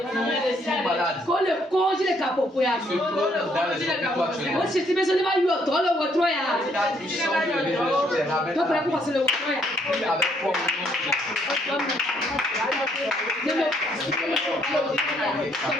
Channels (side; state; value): both; normal; correlation 0.69